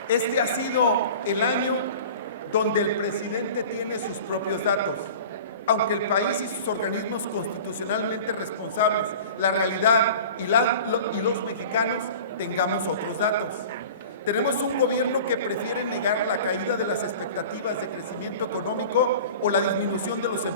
este ha sido el año donde el presidente tiene sus propios datos. Aunque el país y sus organismos constitucionalmente responsables, la realidad y los mexicanos tengamos otros datos. Tenemos un gobierno que prefiere negar la caída de las expectativas de crecimiento económico o la disminución de los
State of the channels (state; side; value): inverted; both; correlation -0.40